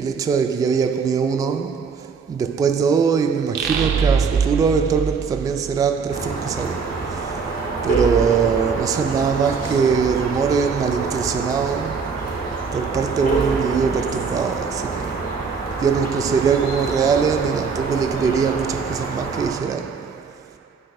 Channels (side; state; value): left; quieter; 5.5 dB